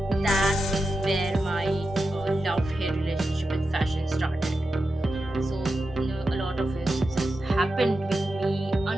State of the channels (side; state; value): both; normal; correlation 0.90